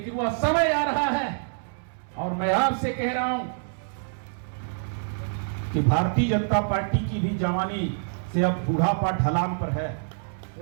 वह समय आ रहा है। और मैं आपसे कह रहा हूं कि भारतीय जनता पार्टी की भी जवानी से अब बुढ़ापा ढलान पर है।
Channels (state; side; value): silent; left; 61 dB below the other